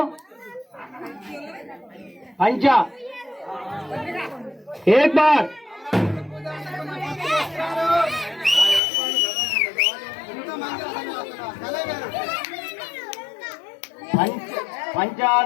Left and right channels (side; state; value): right; drops out; at 8.8 s